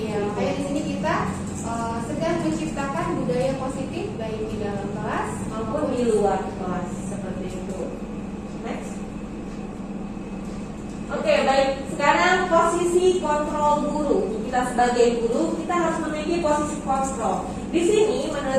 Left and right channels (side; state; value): both; identical; correlation 1.00